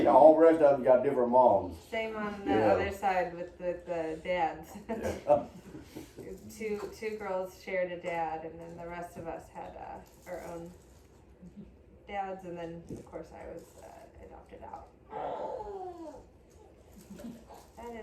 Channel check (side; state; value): both; identical; correlation 1.00